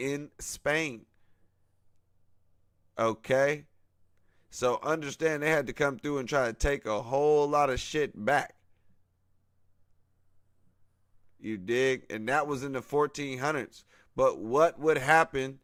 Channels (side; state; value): both; identical; correlation 1.00